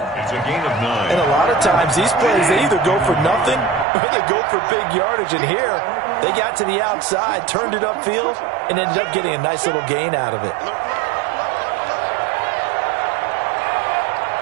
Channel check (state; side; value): drops out; left; at 3.9 s